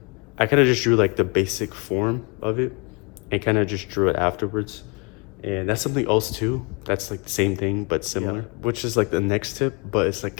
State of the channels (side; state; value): right; quieter; 31.2 dB